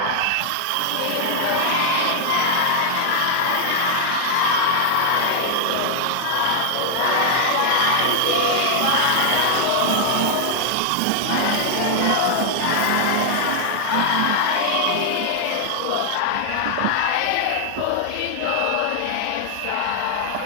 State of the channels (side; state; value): both; different; correlation 0.00